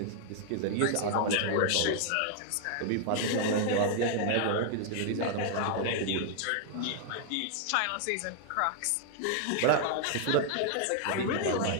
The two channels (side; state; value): both; different; correlation 0.00